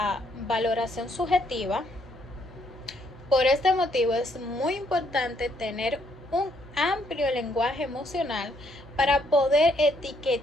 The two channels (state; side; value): normal; both; correlation 0.71